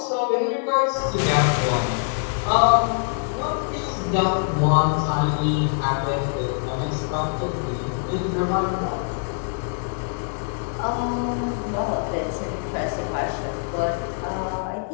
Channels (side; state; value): right; silent; digital silence